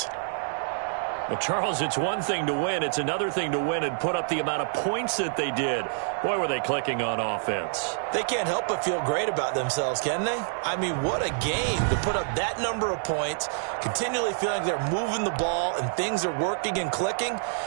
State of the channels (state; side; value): silent; left; 60 dB below the other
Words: Well, Charles, it's one thing to win. It's another thing to win and put up the amount of points that they did. Boy, were they clicking on offense. They can't help but feel great about themselves, can they? I mean, what a game to put up that number of points, continually feeling they're moving the ball and things are working and clicking.